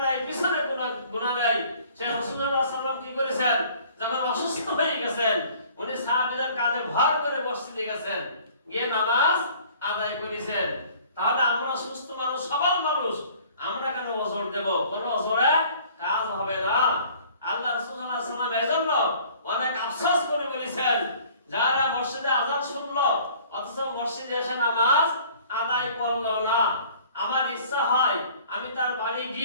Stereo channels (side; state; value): both; inverted; correlation -0.52